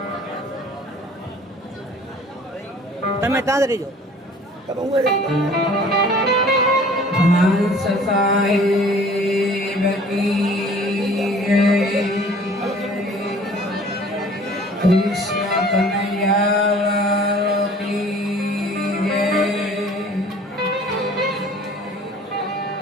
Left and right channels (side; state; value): both; normal; correlation 0.50